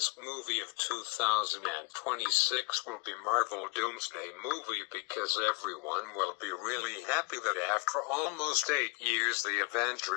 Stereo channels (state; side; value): quieter; right; 30.8 dB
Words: movie of 2026 will be Marvel Doomsday movie, because everyone will be really happy that after almost 8 years the